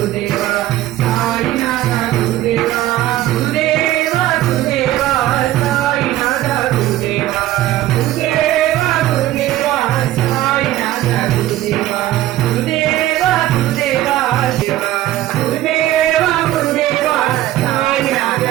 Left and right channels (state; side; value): quieter; left; 14.5 dB